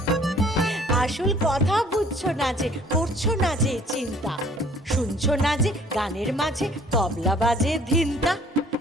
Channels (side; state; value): both; normal; correlation 0.55